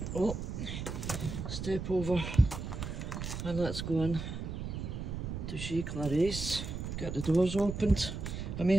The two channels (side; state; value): right; noise; rumble, 5 dB below the sound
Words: Oh, step over and let's go in to see Clarice. Get the doors opened. I may